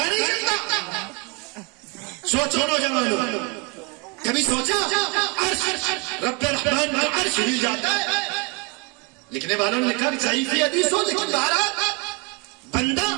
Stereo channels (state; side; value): quieter; left; 30.5 dB